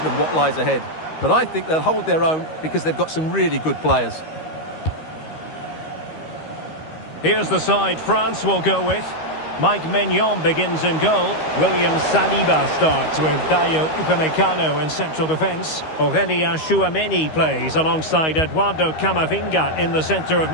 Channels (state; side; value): late; right; 13 ms